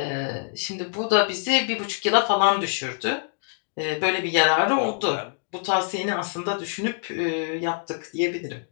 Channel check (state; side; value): silent; right; digital silence